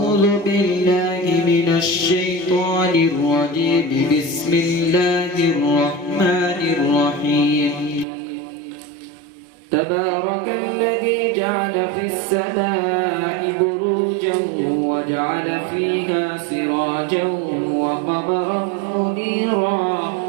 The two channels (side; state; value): left; drops out; at 8.1 s